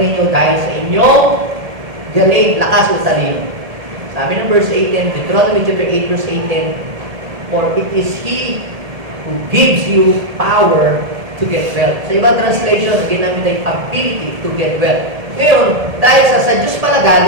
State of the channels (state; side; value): late; left; 1.7 ms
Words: dahil sa inyong galing, lakas o talino. Sabi ng verse 18, Deuteronomy chapter 8 verse 18, for it is He who gives you power to get wealth. Sa ibang translation, ginamit ay ability to get wealth. Ngayon, dahil sa Diyos pala